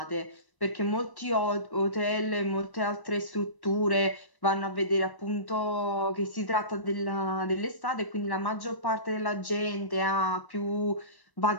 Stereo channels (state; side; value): late; right; 1.1 ms